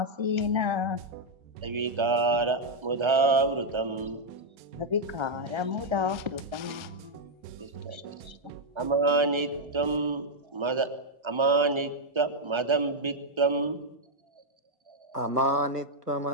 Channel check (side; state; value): left; late; 1.3 ms